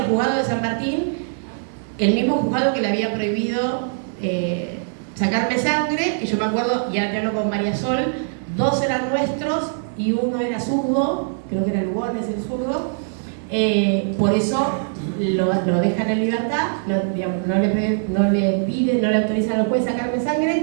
juzgado de San Martín, el mismo juzgado que le había prohibido sacarme sangre, y yo me acuerdo, ya te hablo con María Sol, 2 eran nuestros y uno era zurdo, creo que era Lugones el zurdo, por eso lo dejan en libertad, no le autorizan al juez sacarme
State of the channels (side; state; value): left; silent; digital silence